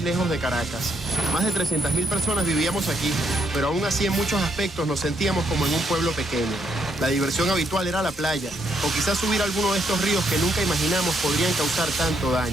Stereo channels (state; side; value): normal; both; correlation 0.75